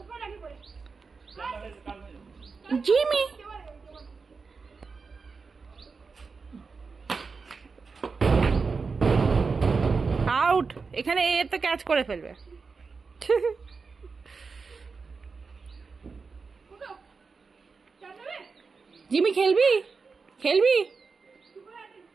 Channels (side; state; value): left; quieter; 4.7 dB